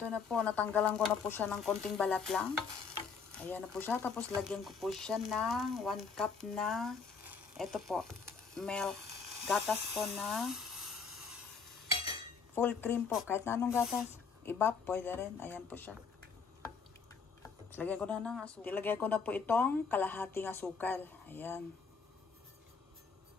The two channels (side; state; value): right; quieter; 5.4 dB